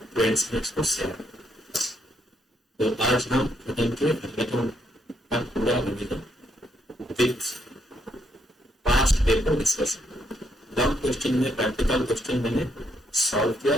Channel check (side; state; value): both; normal; correlation 0.75